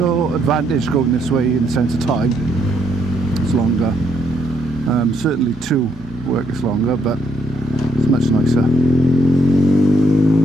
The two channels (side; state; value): both; normal; correlation 0.72